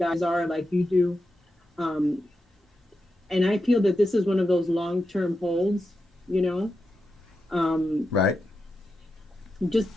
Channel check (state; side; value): normal; both; correlation 0.88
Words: are, like you do. Um, and I feel that this is one of those long term holds, you know. Um, Right. just